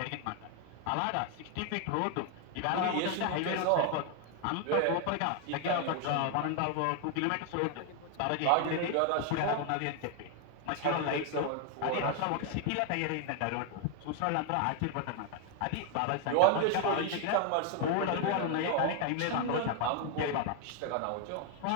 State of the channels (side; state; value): both; different; correlation 0.01